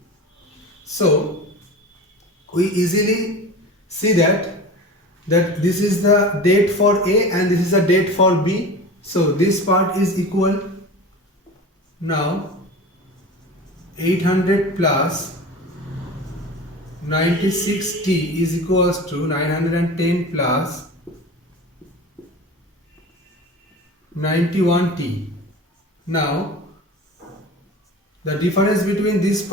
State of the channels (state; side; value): normal; both; correlation 0.34